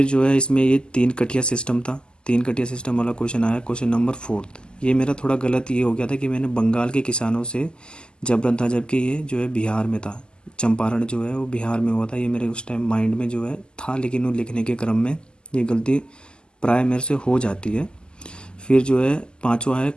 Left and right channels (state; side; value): late; right; 0.048 ms